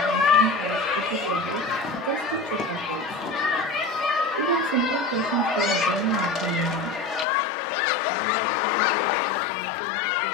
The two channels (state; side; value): drops out; right; at 7.2 s